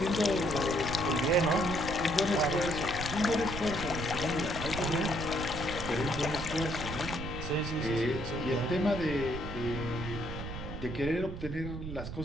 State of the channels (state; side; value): noise; right; rumble, 7 dB below the sound